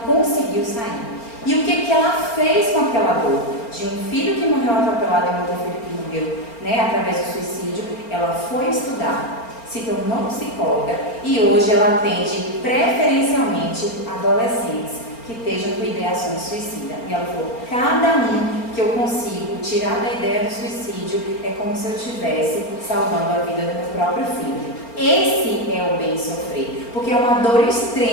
conseguiu sair. E o que ela fez com aquela dor? De um filho que morreu atropelado e outro filho que morreu, né, através do suicídio, ela foi estudar, se tornou psicóloga e hoje ela atende preferencialmente adolescentes que estejam com ideações suicidas. E ela falou: cada um que eu consigo tirar da ideia do suicídio é como se eu estivesse salvando a vida do meu próprio filho. Esse é o bem sofrer, porque é uma dor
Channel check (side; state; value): right; late; 4.4 ms